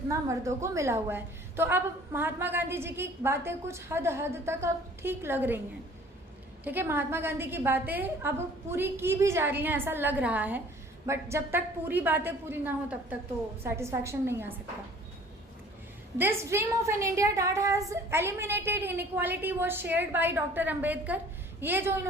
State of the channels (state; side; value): normal; both; correlation 0.51